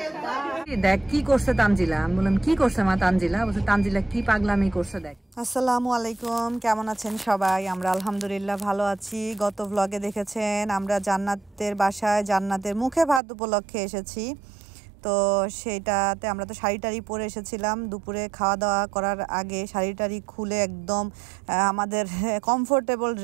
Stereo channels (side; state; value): left; drops out; at 13.2 s